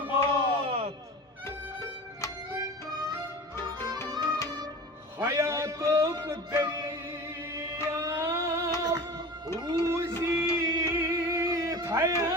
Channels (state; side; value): normal; both; correlation 0.35